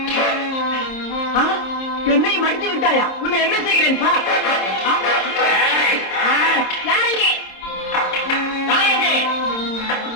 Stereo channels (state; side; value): late; right; 26 ms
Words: என்னையும் மடித்து விட்டாயா? உன்னை என்ன செய்கிறேன் பார். யாரங்கே? யாரங்கே?